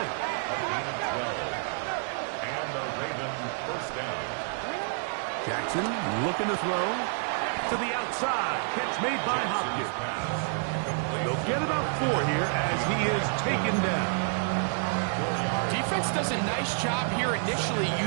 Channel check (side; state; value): left; silent; 59 dB below the other